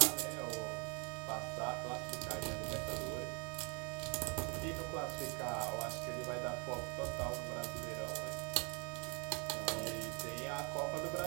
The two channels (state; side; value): quieter; left; 33.4 dB